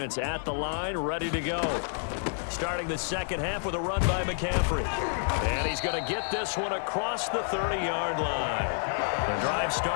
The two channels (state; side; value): silent; right; digital silence